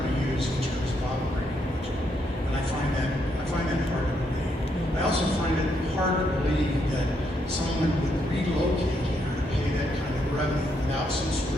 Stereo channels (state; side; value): normal; both; correlation 0.76